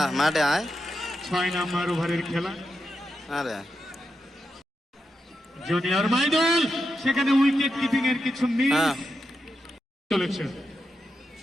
মাঠে আয় 6 নম্বর ওভারের খেলা আরে জুনিয়র মাইদুল সেখানে উইকেট কিপিং এর কিছু মিস চলেছে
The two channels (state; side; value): normal; both; correlation 0.87